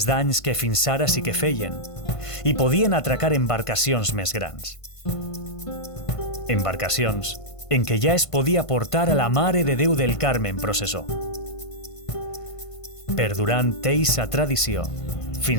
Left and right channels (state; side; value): late; right; 1.5 ms